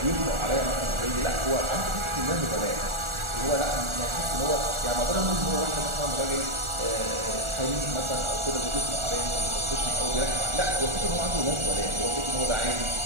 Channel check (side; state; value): left; late; 1.4 ms